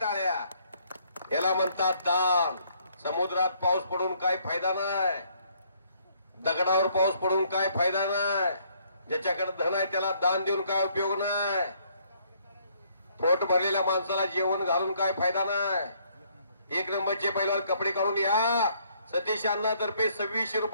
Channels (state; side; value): inverted; both; correlation -0.67